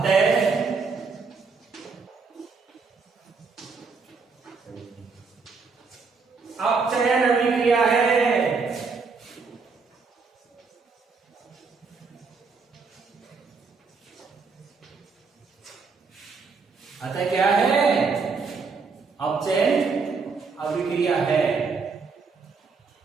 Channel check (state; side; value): quieter; left; 4.8 dB